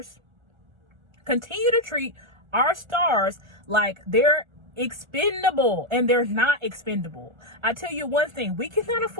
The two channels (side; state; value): left; late; 1.4 ms